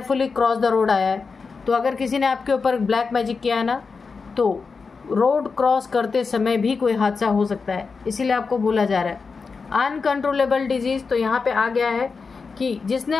क्रॉस द रोड आया है, तो अगर किसी ने आपके ऊपर ब्लैक मैजिक किया है ना, तो रोड क्रॉस करते समय भी कोई हादसा हो सकता है, इसीलिए आपको बोला जा रहा है अनकंट्रोलेबल डिजीज़, तो यहाँ पे आ गया है कि जिसने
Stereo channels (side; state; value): right; quieter; 4.8 dB